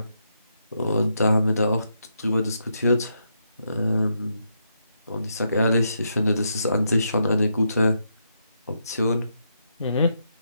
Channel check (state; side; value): inverted; both; correlation -0.80